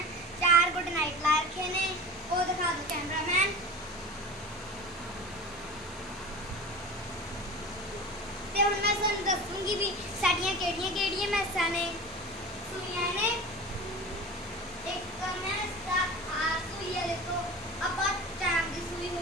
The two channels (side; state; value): both; normal; correlation 0.34